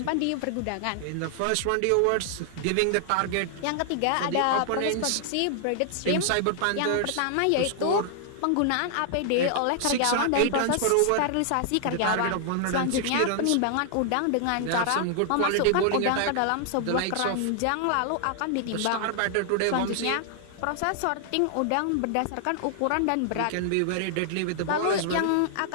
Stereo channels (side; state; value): both; different; correlation 0.00